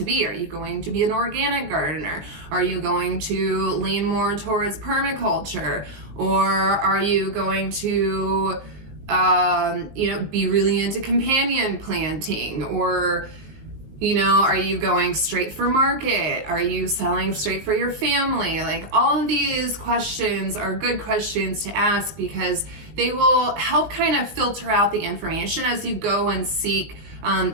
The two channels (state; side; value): late; left; 19 ms